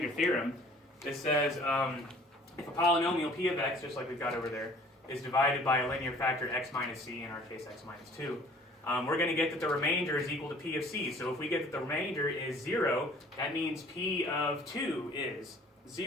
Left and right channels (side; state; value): both; normal; correlation 0.52